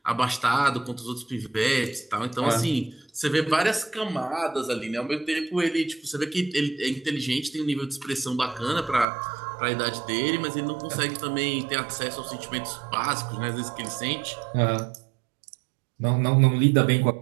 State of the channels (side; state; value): left; drops out; at 9.1 s